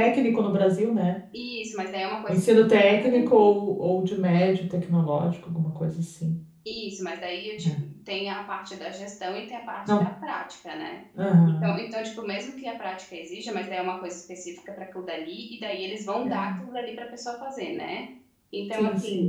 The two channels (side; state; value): both; identical; correlation 1.00